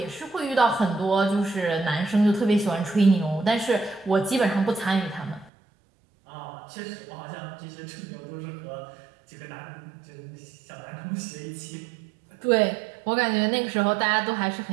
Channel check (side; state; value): left; drops out; at 5.5 s